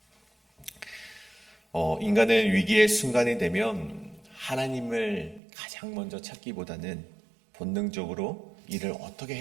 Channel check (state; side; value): drops out; left; at 5.4 s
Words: 인간은 위기의 순간이 되면 하나님을 가장 먼저 찾기보다는 본능적으로 이를 어떻게